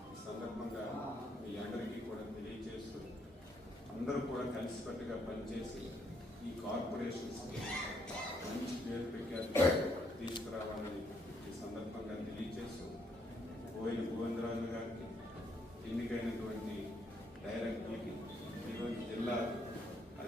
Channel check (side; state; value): both; normal; correlation 0.72